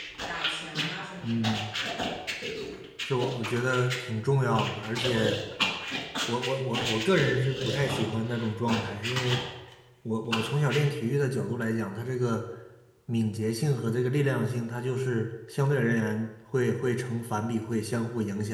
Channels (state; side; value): identical; both; correlation 1.00